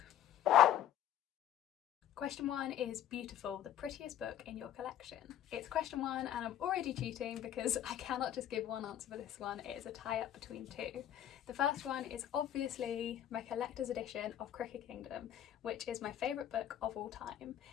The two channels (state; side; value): quieter; right; 10.9 dB